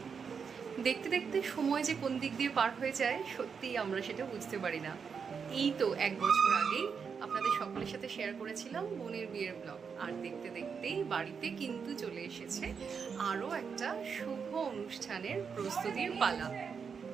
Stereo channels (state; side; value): quieter; left; 6.2 dB